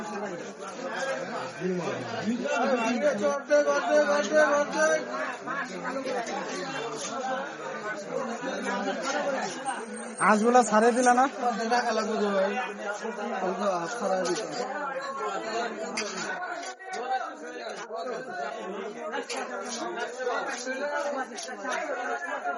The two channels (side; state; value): both; identical; correlation 1.00